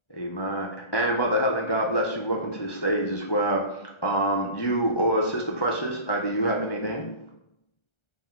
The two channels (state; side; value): late; right; 1.3 ms